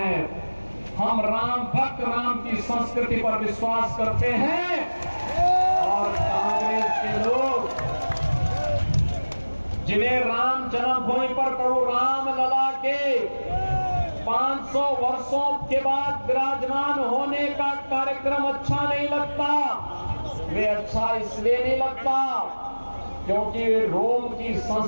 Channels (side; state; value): both; inverted; correlation -1.00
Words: हम राम भक्त राम की संस्कृति पर विश्वास करते हैं और कांग्रेस के लोग जिन्हें राम जन्मभूमि पर प्रभु राम लला के 500 वर्षों के बाद विराजमान होने का कार्यक्रम अच्छा नहीं लगता। वे अच्छा इसलिए नहीं लगता क्योंकि वे रोम की